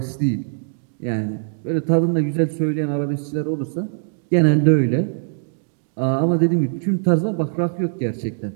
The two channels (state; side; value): silent; left; digital silence